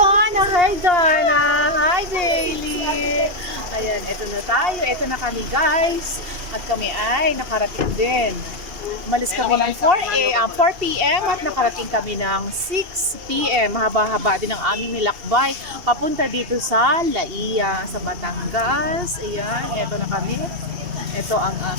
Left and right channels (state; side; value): late; left; 2.7 ms